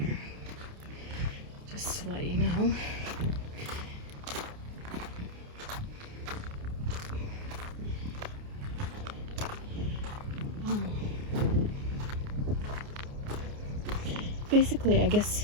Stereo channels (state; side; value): late; left; 29 ms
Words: just to let you know. basically, I guess